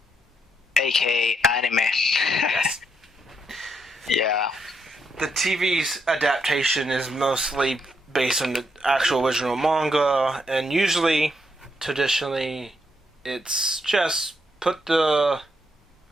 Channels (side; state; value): both; normal; correlation 0.78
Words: AKA anime. Yes. Yeah. The TV's adaptation is mostly based on the actual original manga, and usually, traditionally, it's just put the